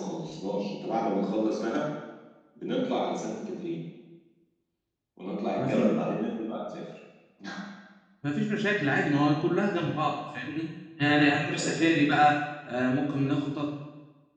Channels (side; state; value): both; identical; correlation 1.00